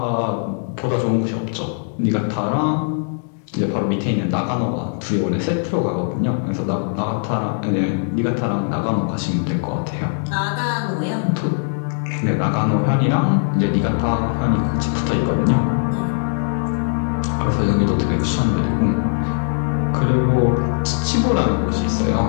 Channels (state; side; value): silent; right; digital silence